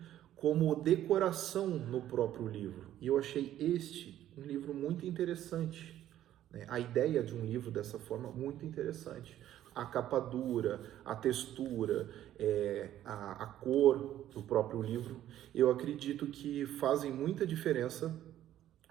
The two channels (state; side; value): quieter; left; 12.3 dB